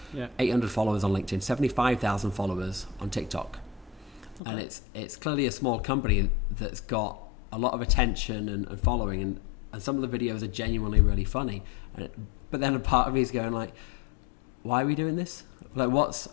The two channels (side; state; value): right; drops out; at 4.4 s